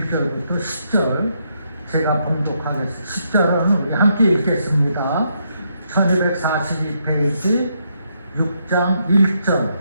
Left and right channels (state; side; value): inverted; both; correlation -0.77